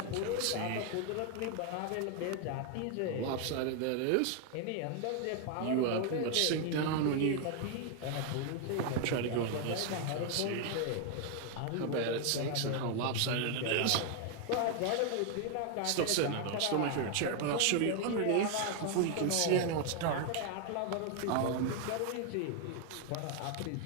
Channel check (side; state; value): both; different; correlation 0.00